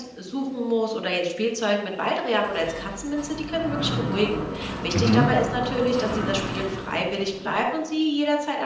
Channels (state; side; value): identical; both; correlation 1.00